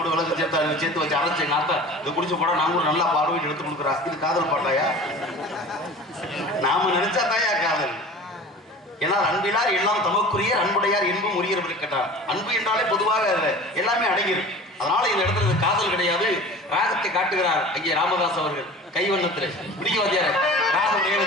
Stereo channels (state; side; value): normal; both; correlation 0.39